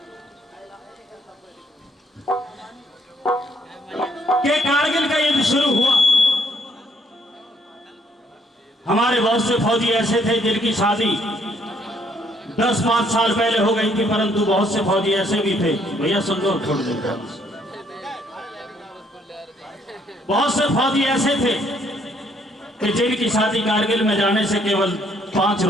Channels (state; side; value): normal; both; correlation 0.68